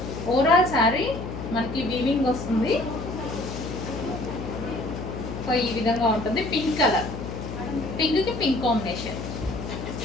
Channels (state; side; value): noise; left; hum, 7 dB below the sound